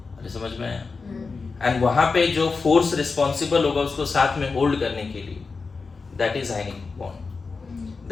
अरे समझ में आया? एंड वहां पे जो फोर्स रिस्पॉन्सिबल होगा उसको साथ में होल्ड करने के लिए, that is ionic bond,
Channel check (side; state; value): right; quieter; 4.5 dB